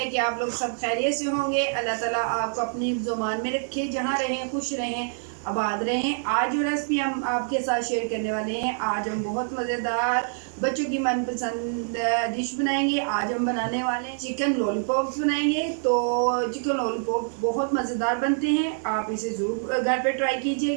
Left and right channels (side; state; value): left; silent; digital silence